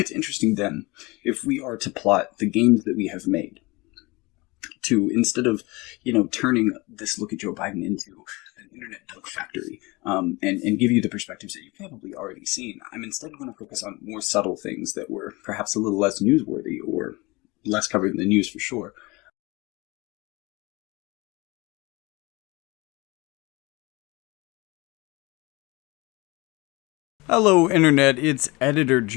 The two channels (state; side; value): quieter; right; 24.0 dB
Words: interesting then, if we are to plot the gains that we have made, to instead of, turning this look at Joe Biden into an internet dunk factory and give you the perspectives that you've probably already seen, I'm instead going to focus on more subtle things that were perhaps a little less newsworthy or less covered in the news for sure. Hello, Internet. It's Editor